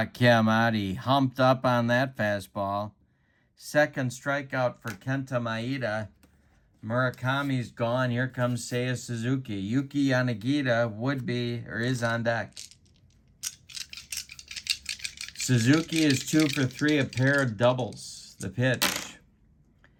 him out. He humped up on that fastball. Second strikeout for Kenta Maeda. Murakami's gone. Here comes Seiya Suzuki. Yuki Yanagita would be or is on deck. Suzuki is 2 for 3, a pair of doubles. The pitch.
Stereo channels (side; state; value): both; identical; correlation 1.00